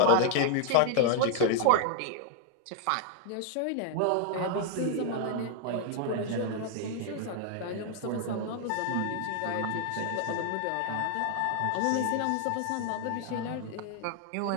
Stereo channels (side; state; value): both; different; correlation 0.00